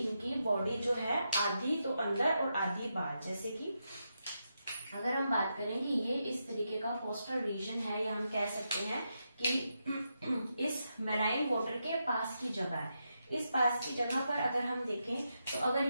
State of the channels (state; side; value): inverted; both; correlation -0.85